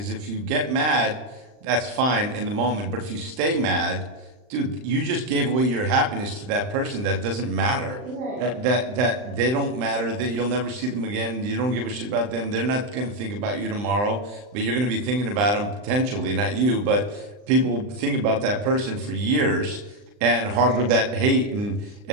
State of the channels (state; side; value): late; left; 39 ms